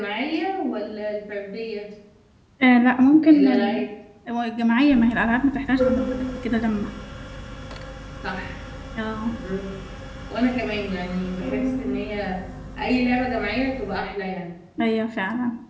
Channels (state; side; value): identical; both; correlation 1.00